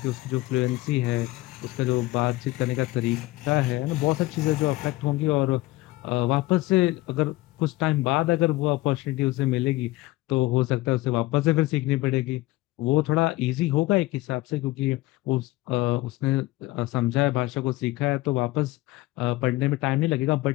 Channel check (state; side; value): quieter; right; 18.8 dB